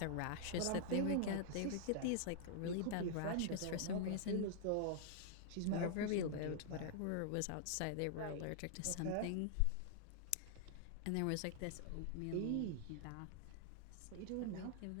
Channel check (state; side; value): different; both; correlation -0.01